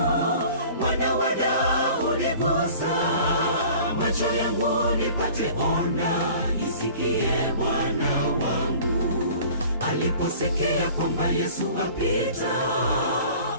Mwana wa Daudi gusa macho yangu nipate ona, isikie Bwana wangu. Aliposikia kwamba Yesu apita,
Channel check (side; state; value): both; inverted; correlation -0.46